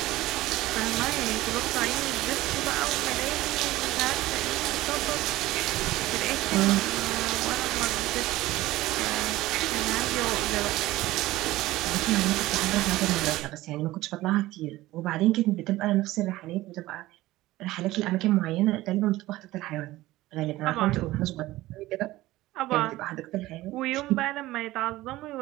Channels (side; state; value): left; quieter; 17.3 dB